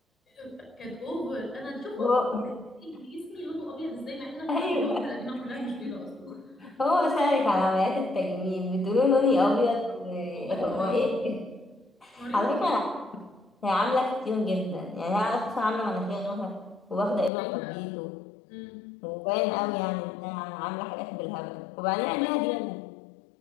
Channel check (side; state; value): right; drops out; at 17.3 s